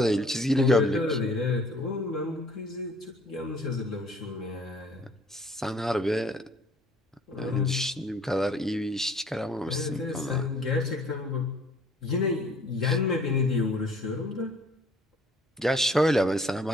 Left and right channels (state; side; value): normal; both; correlation 0.56